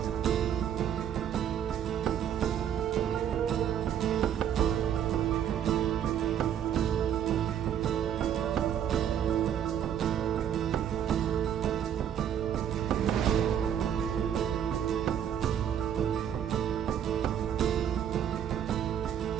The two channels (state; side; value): quieter; left; 9.4 dB